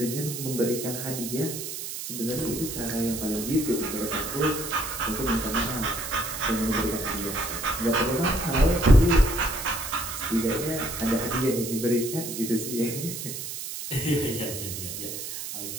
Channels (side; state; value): right; noise; hiss, 7 dB below the sound